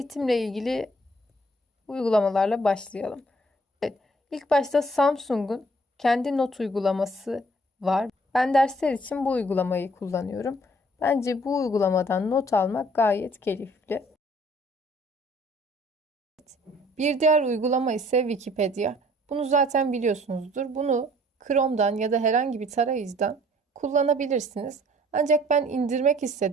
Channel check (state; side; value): normal; both; correlation 0.58